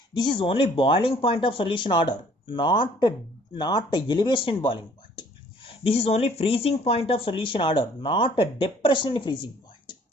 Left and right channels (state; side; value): normal; both; correlation 0.58